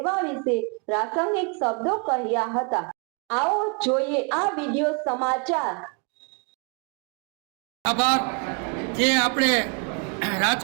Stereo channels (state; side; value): quieter; left; 35.6 dB